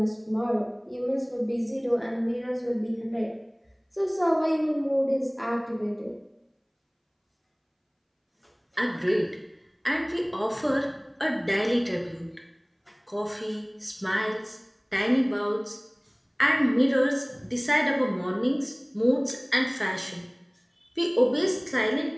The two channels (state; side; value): identical; both; correlation 1.00